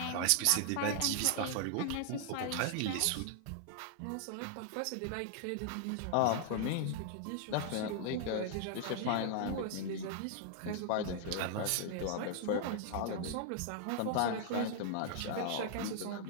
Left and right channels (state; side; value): different; both; correlation 0.00